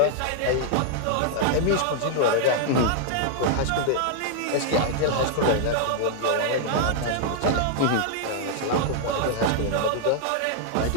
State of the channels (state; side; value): different; both; correlation -0.01